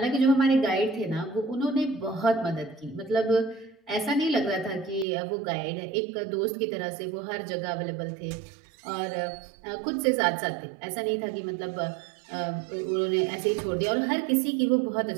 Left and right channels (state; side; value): drops out; left; at 5.1 s